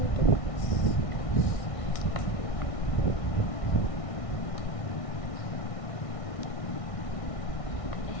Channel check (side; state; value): right; late; 1.6 ms